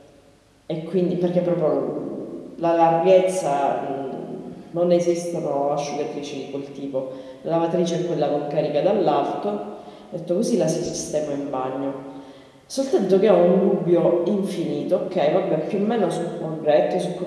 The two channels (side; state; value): both; identical; correlation 1.00